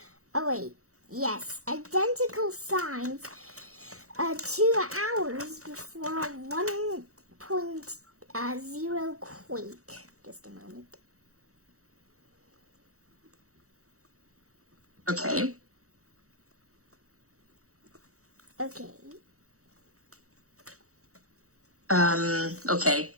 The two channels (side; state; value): left; late; 0.65 ms